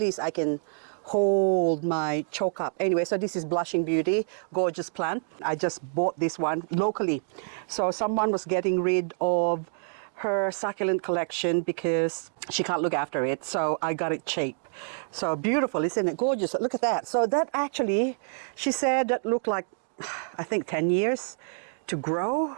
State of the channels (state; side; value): silent; left; digital silence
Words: I can hold my choke up. Anyway, so this is Blushing Beauty, gorgeous plant. I just bought this one locally. So someone was getting rid of her succulent collection because she can't look after it. So I got it cheap. So beautiful, isn't it? Gorgeous. Look at that. So that actually, she said that looked like, I think 10 years to grow